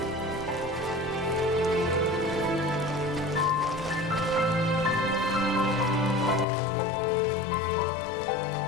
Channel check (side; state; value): right; drops out; at 6.5 s